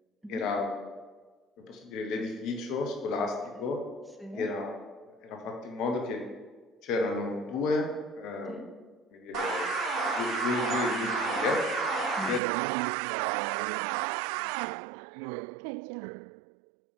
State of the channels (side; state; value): left; drops out; at 12.4 s